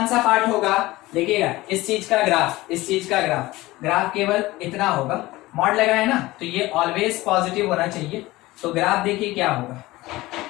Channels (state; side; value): quieter; right; 18.9 dB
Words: सा पार्ट होगा, देखिएगा इस चीज का ग्राफ केवल इतना होगा, मॉड लगा है ना, तो ये ऑलवेज पॉजिटिव होना चाहिए। तो ग्राफ देखिए क्या होगा,